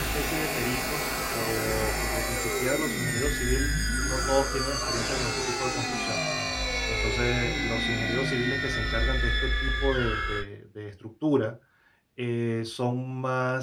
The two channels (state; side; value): identical; both; correlation 1.00